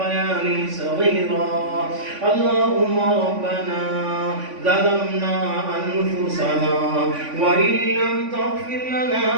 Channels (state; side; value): late; left; 3.5 ms